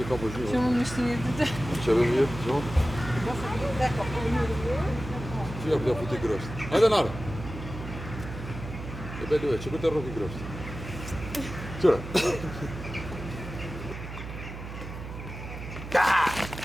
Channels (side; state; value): right; noise; hum, 10 dB below the sound